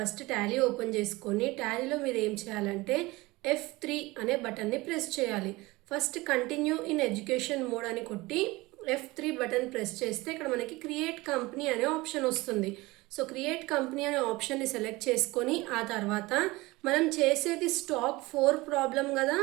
టాలీ ఓపెన్ చేసుకొని టాలీలో మీరు ఏం చేయాలంటే F3 అనే బటన్ని ప్రెస్ చేయాలి. First continue in education mode అని కొట్టి F3 బటన్ ప్రెస్ చేస్తే ఇక్కడ మనకి క్రియేట్ కంపెనీ అనే ఆప్షన్ వస్తుంది. సో క్రియేట్ కంపెనీ అనే ఆప్షన్ని సెలెక్ట్ చేసుకొని ఆ తర్వాత మనం చేసేది స్టాక్ 4 ప్రాబ్లం కదా.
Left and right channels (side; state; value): left; quieter; 21.4 dB